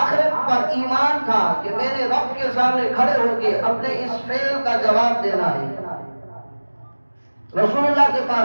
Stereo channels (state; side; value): inverted; both; correlation -1.00